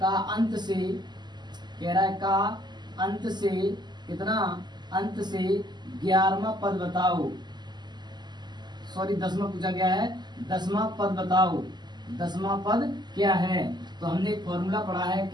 का अंत से कह रहा है, का अंत से कितना, अंत से 11वां पद बताओ। सॉरी 10वां पूछा गया है, 10वां पद बताओ, 10वां पद क्या है। तो हमने एक फॉर्मूला पढ़ा है,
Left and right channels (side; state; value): left; late; 0.21 ms